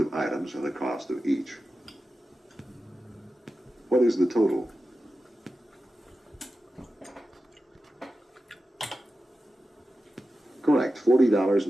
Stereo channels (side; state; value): both; normal; correlation 0.92